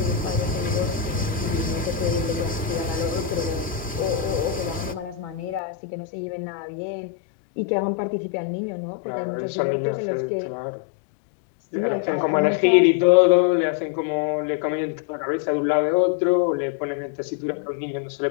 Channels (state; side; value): drops out; right; at 5.6 s